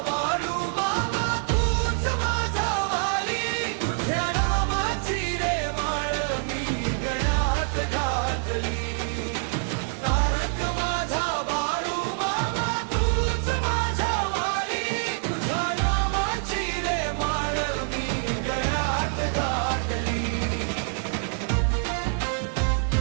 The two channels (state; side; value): silent; left; 55 dB below the other